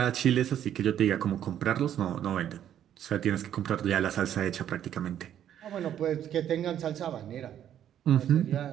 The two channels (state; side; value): quieter; left; 10.4 dB